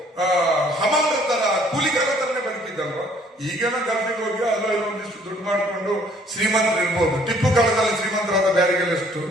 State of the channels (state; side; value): normal; both; correlation 0.60